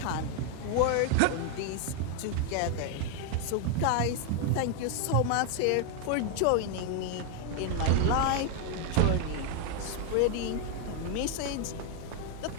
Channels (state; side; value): different; both; correlation 0.00